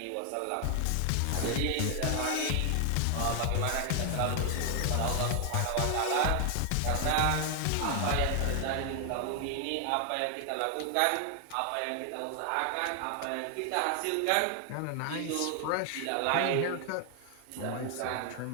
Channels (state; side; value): different; both; correlation 0.00